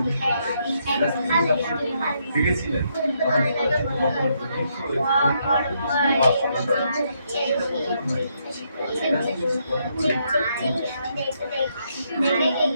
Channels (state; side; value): inverted; both; correlation -0.76